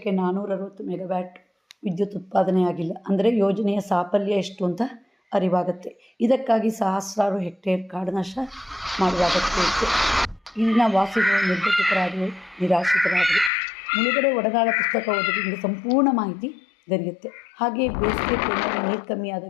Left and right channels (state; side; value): drops out; right; at 13.5 s